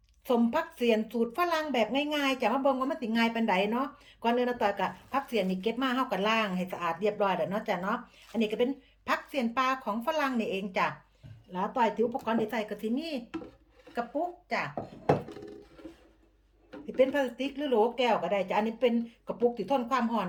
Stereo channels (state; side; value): identical; both; correlation 1.00